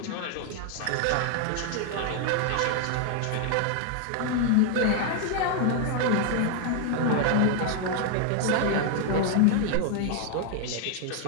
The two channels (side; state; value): both; different; correlation 0.00